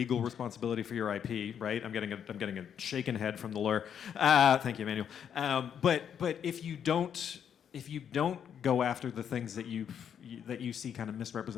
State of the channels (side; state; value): right; quieter; 8.4 dB